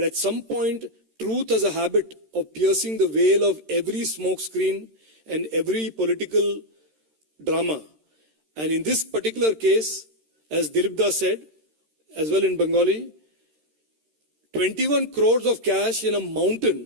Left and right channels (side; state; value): left; late; 13 ms